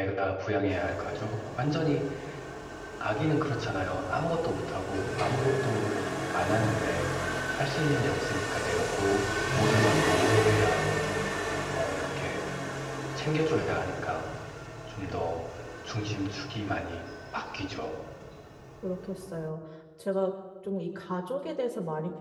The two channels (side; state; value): both; identical; correlation 1.00